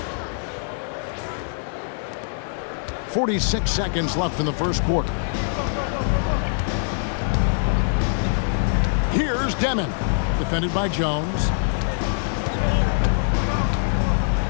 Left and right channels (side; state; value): right; silent; digital silence